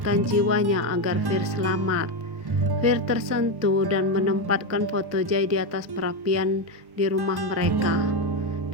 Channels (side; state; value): left; late; 1.1 ms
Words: jiwanya agar Fir selamat. Fir tersentuh dan menempatkan foto Jai di atas perapian di rumah mereka.